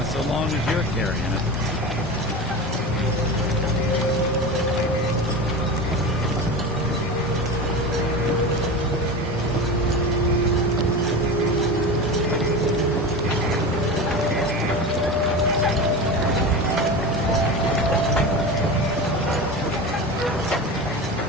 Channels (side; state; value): both; normal; correlation 0.26